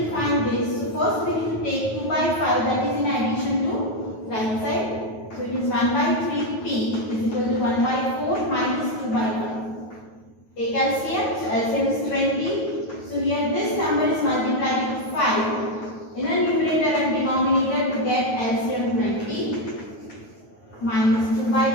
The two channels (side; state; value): right; late; 9.3 ms